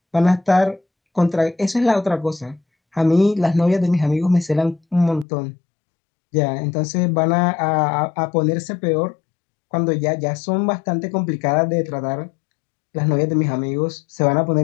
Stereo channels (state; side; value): drops out; right; at 5.2 s